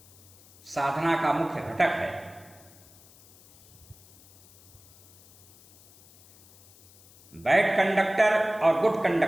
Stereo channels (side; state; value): left; noise; hiss, 26 dB below the sound